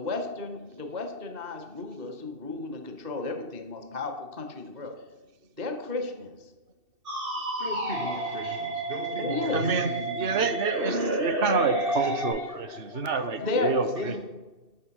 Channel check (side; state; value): left; late; 2.7 ms